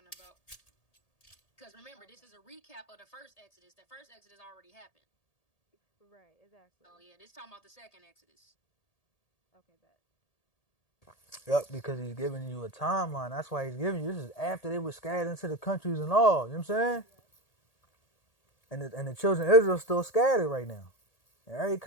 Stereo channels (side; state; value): right; late; 1.8 ms